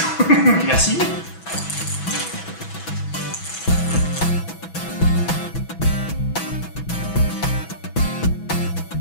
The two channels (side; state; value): right; late; 6.1 ms